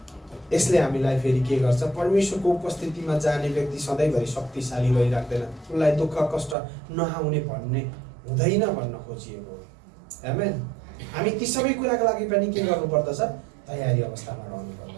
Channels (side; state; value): left; drops out; at 6.6 s